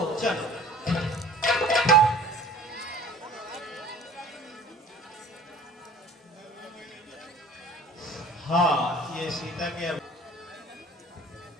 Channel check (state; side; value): normal; both; correlation 0.47